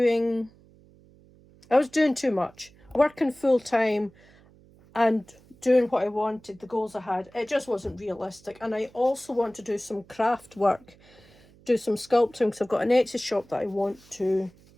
doing too much. Working full time and doing what I wanted, the goals I had. It just wasn't realistic. And I also want to do some craft work, do some sculpting, because I've got an Etsy shop that I want to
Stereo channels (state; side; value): noise; right; hum, 27 dB below the sound